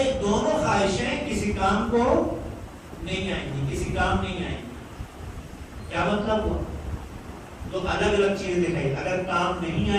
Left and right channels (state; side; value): identical; both; correlation 1.00